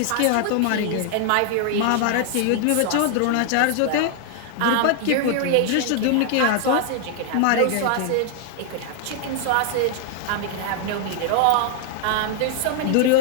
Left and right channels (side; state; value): both; different; correlation 0.00